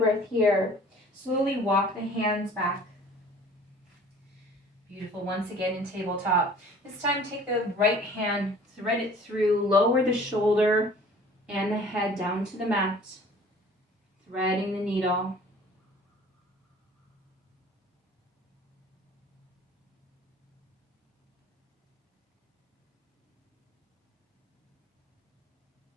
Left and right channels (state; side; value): normal; both; correlation 0.49